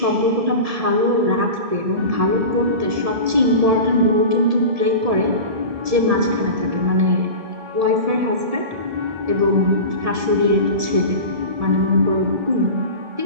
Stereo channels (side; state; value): left; late; 1.7 ms